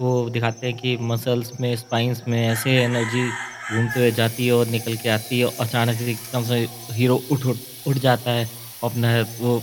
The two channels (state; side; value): identical; both; correlation 1.00